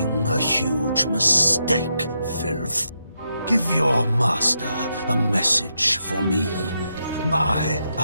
a huge mistake, filth. Give your master a message for me. My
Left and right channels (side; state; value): both; inverted; correlation -0.83